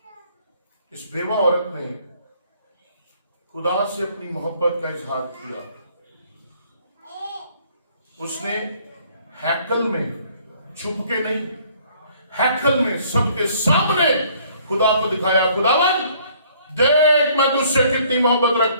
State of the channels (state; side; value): inverted; both; correlation -0.60